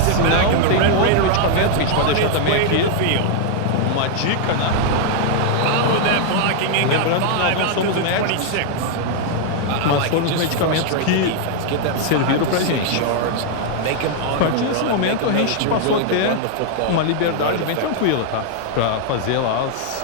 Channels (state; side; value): different; both; correlation 0.00